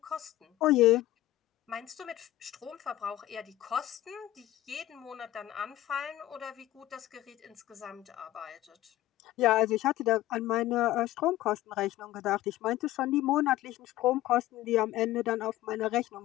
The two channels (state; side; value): quieter; right; 14.9 dB